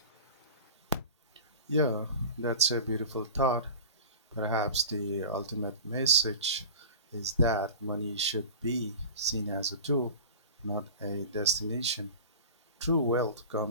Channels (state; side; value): inverted; both; correlation -0.36